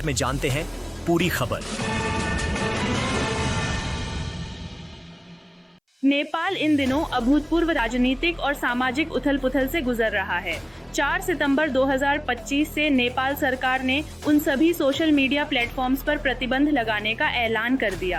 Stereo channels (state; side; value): identical; both; correlation 1.00